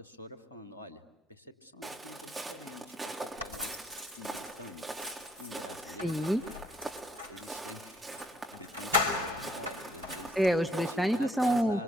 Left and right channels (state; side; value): normal; both; correlation 0.66